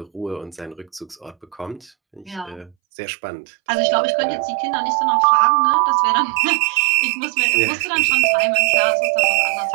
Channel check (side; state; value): left; drops out; at 2.8 s